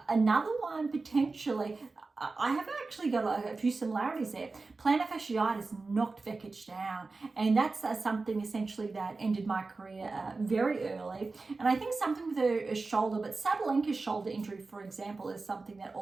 another one potentially, I have actually got a few similarities there. Plantar fasciitis knocked Vekic down, and that's something essentially that ended my career very early. And I think something with her shoulder, but Sabalenka's shoulder injury, for example, is something that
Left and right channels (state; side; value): quieter; left; 3.8 dB